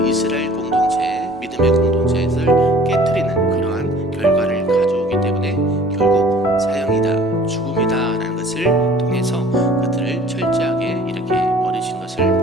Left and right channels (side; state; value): both; normal; correlation 0.50